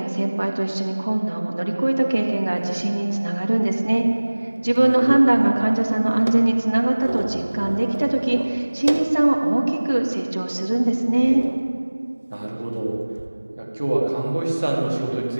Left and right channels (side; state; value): both; inverted; correlation -1.00